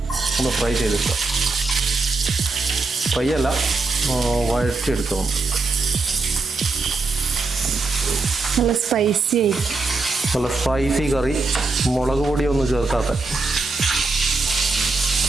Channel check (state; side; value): quieter; left; 3.7 dB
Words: ഒന്ന് ഫ്രൈ ചെയ്തെടുക്കുക. ഫ്രൈ അല്ല, വഴറ്റിയെടുക്കുക. നല്ല സ്പൈസി ആയിരിക്കും. നല്ല സ്പൈസി കറി, മുളക് പൊടിയൊന്നും ചേർക്കാത്ത.